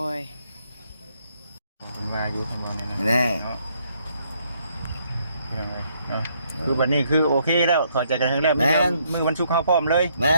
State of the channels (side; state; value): both; inverted; correlation -0.71